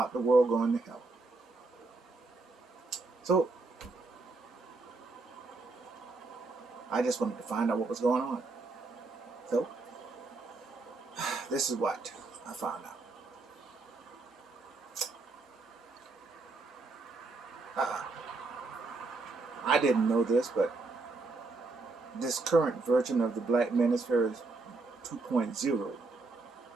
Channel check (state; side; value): quieter; left; 3.6 dB